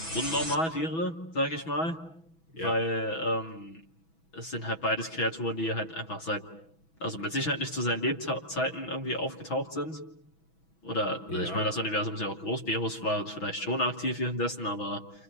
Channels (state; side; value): late; right; 6.1 ms